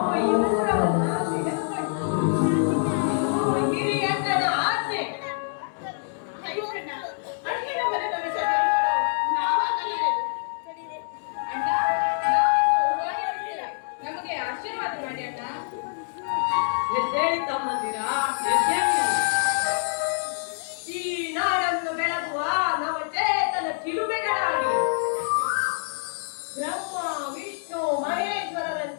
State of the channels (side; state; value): right; silent; digital silence